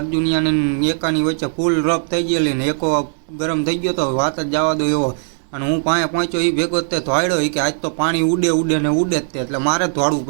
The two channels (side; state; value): left; silent; digital silence